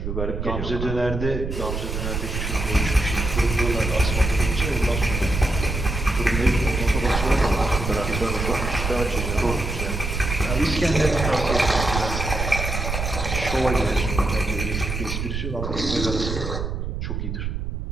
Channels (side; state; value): right; noise; rumble, 3 dB below the sound